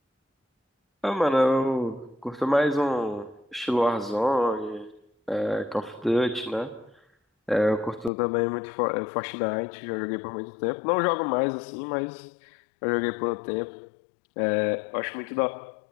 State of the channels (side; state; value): right; drops out; at 8.1 s